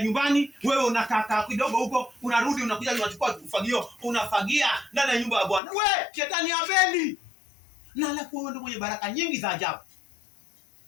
nyumbani, wewe unakaa kidogo huko, unarudi unakuja unachukua ufagio, unafagia ndani ya nyumba ya Bwana. Shetani hapendi. Na alafu wewe ndio mwenye baraka nyingi za ajabu.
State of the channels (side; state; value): right; drops out; at 5.6 s